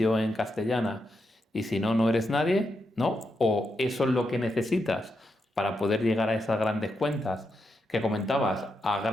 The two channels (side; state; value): both; normal; correlation 0.84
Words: en castellana y si no, no eres nadie, ¿no? O eso es lo que necesitas para poder llegar a esas grandes cuentas que comentabas, a